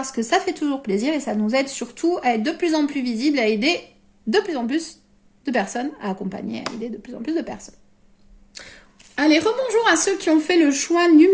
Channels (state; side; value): identical; both; correlation 1.00